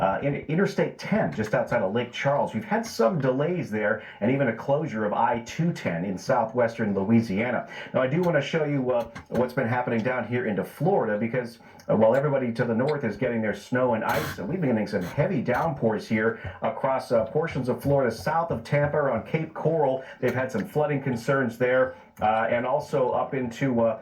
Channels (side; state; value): both; identical; correlation 1.00